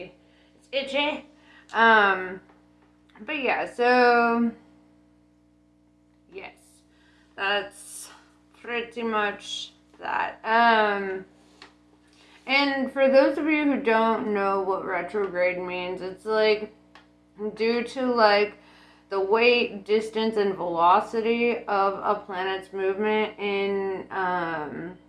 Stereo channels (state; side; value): identical; both; correlation 1.00